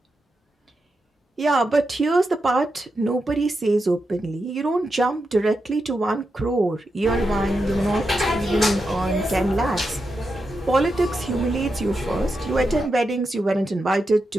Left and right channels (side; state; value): both; normal; correlation 0.87